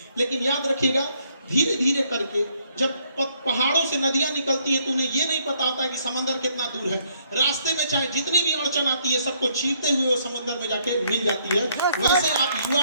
लेकिन याद रखिएगा धीरे धीरे करके जब पहाड़ों से नदियां निकलती हैं तो उन्हें ये नहीं पता होता है कि समंदर कितना दूर है। रास्ते में चाहे जितनी भी अड़चन आती है सबको चीरते हुए वो समंदर में जाके मिल जाती है। वैसे आप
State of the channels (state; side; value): inverted; both; correlation -0.69